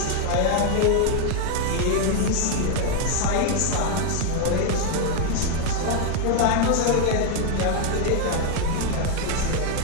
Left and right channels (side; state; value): both; different; correlation 0.01